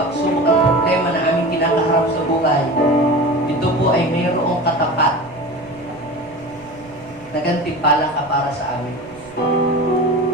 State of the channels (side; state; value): right; noise; rumble, 24 dB below the sound